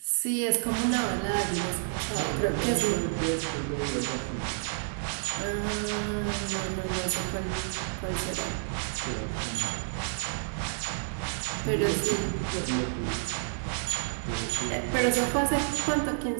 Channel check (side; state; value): left; silent; digital silence